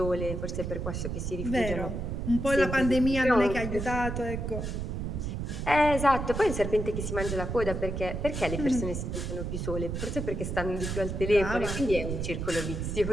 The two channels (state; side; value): noise; right; rumble, 4 dB below the sound